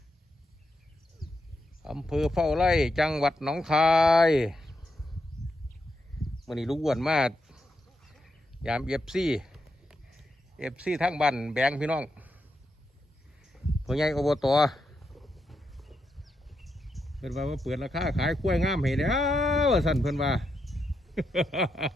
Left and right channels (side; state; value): both; normal; correlation 0.84